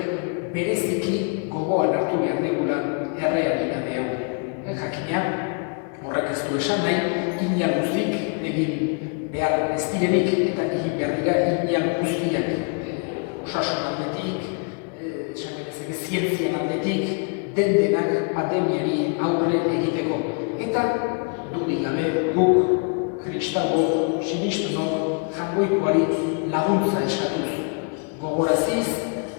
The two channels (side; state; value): right; quieter; 39.4 dB